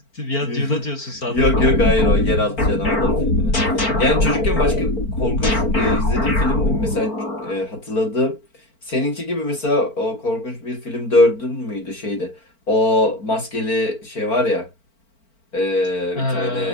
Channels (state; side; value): late; right; 4.4 ms